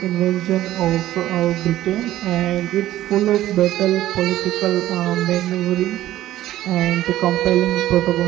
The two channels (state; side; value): quieter; left; 14.0 dB